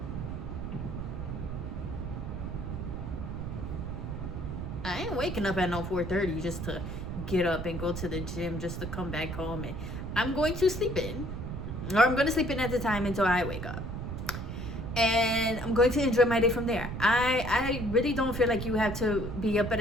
I ain't waking up at no 4:30 just to get up and go to the gym just to come back home, and I'm going to sleep in, or I'm going to sleep in at the time until I wake up, and I'm going to enjoy my day from there. I really don't feel like you have to be up at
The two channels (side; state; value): right; noise; rumble, 6 dB below the sound